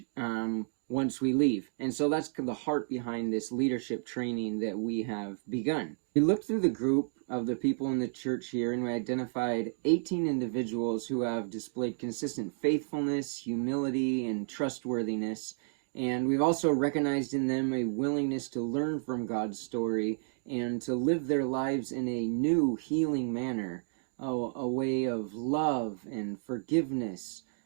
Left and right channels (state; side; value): silent; left; digital silence